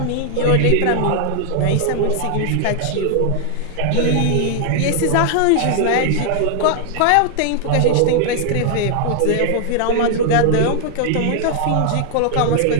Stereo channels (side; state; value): both; different; correlation 0.00